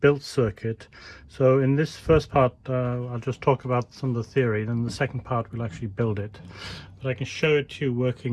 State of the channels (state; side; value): identical; both; correlation 1.00